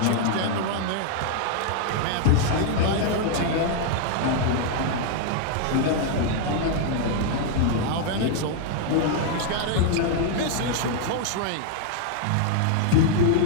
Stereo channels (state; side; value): different; both; correlation 0.00